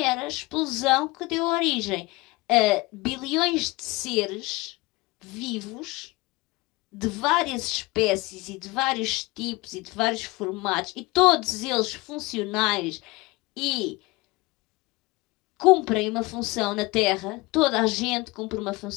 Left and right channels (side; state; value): right; quieter; 22.9 dB